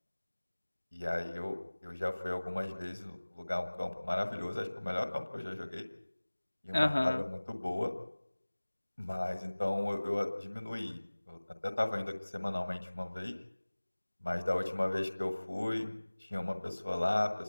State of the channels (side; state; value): both; inverted; correlation -1.00